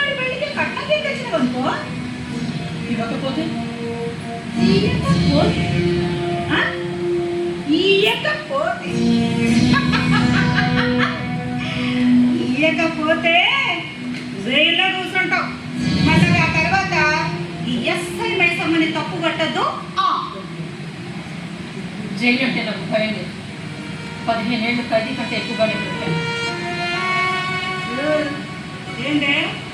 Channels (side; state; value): both; identical; correlation 1.00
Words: పెళ్లికి కట్నం తెచ్చిన అనుకో ఇవ్వకపోతే ఇయ్యకపోతే జైల్లో కూర్చుంటావు. మళ్ళీ ఆ తర్వాత ఈ ఎస్ఐ మైసమ్మని తప్పు కట్టద్దు. జైలు అంటే నాకు భయం లేదు. 15 ఏళ్ళు ఖైదీ కంటే ఎక్కువగానే పెట్టాను. ఏంటే